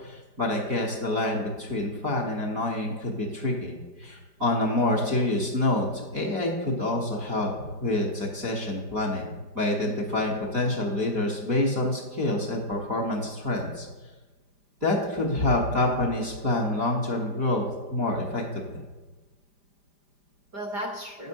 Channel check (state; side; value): late; left; 5.0 ms